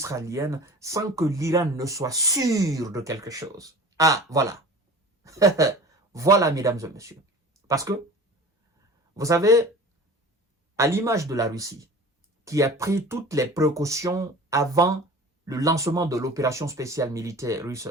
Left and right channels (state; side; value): normal; both; correlation 0.40